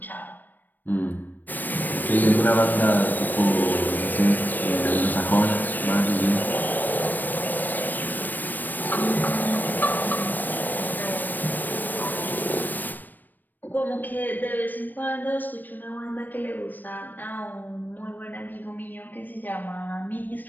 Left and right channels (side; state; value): right; late; 0.089 ms